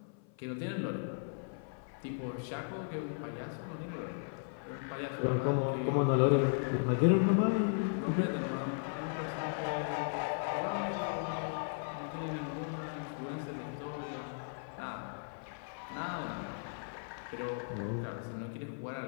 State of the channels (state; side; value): silent; right; 54 dB below the other